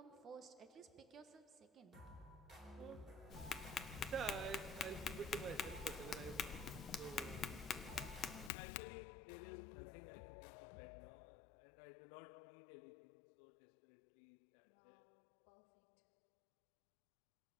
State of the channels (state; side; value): drops out; right; at 8.5 s